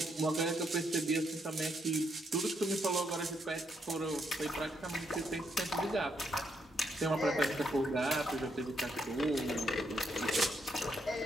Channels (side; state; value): both; normal; correlation 0.76